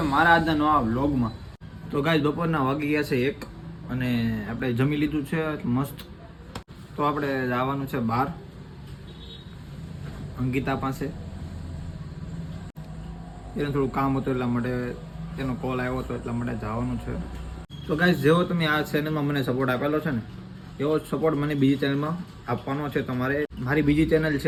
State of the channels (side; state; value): both; identical; correlation 1.00